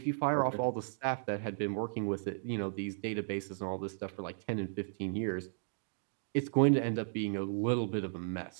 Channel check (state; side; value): silent; left; digital silence